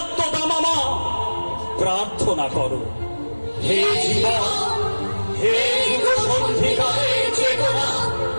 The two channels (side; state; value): both; inverted; correlation -1.00